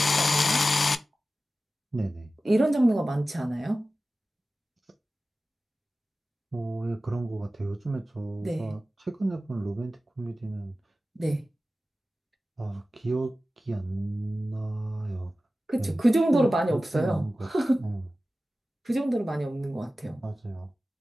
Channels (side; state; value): both; normal; correlation 0.95